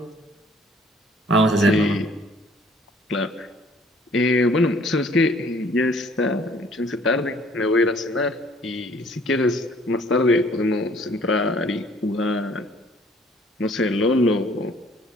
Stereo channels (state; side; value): normal; both; correlation 0.58